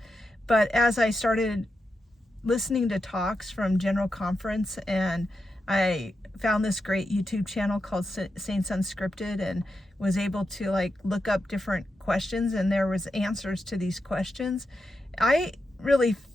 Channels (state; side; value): normal; both; correlation 0.87